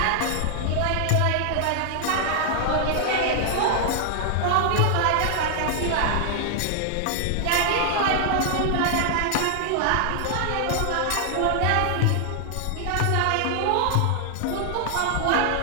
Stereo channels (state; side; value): different; both; correlation 0.00